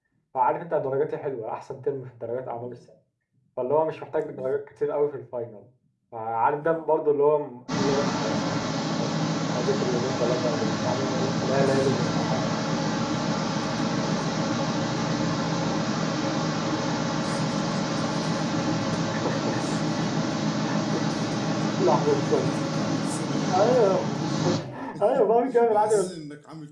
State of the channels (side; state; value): both; identical; correlation 1.00